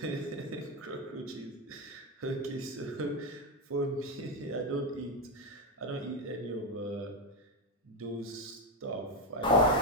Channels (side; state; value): both; normal; correlation 0.08